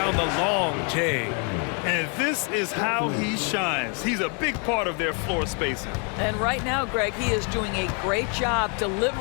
the long J. And this is how he shines. He's a big part of their floor spacing. And right now, Greg, he is doing a great job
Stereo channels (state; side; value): quieter; right; 37.3 dB